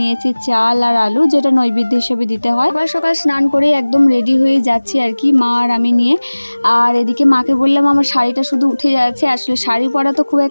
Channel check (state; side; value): inverted; both; correlation -1.00